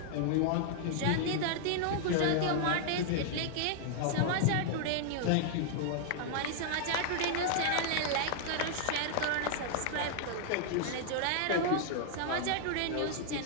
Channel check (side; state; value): both; different; correlation -0.01